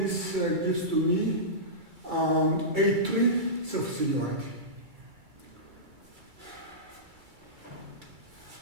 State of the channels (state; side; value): late; left; 2.3 ms